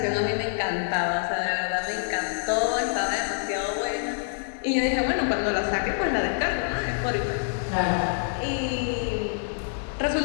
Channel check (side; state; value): right; silent; digital silence